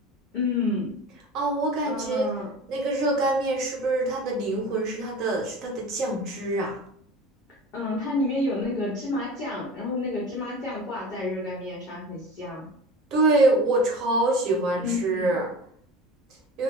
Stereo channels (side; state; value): both; normal; correlation 0.36